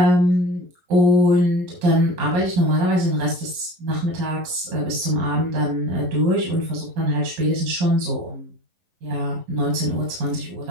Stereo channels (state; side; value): late; left; 11 ms